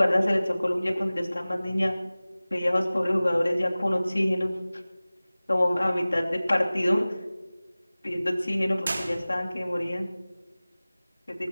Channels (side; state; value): both; inverted; correlation -0.98